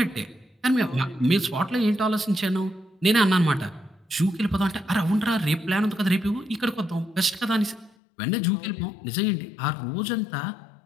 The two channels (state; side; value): drops out; right; at 7.9 s